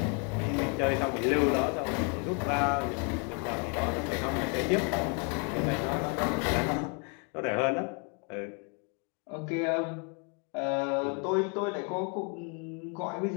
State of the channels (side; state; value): right; quieter; 36.4 dB